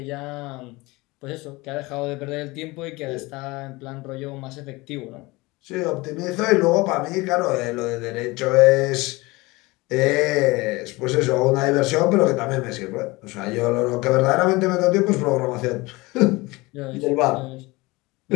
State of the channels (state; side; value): quieter; right; 22.5 dB